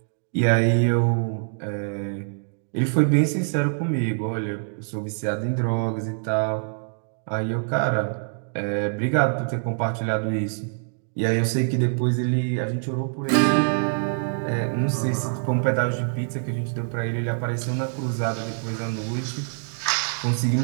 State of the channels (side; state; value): left; silent; digital silence